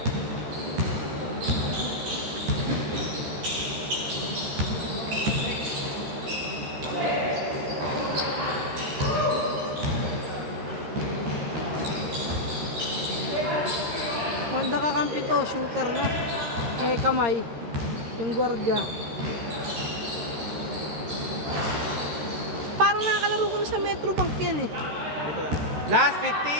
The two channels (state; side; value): late; left; 13 ms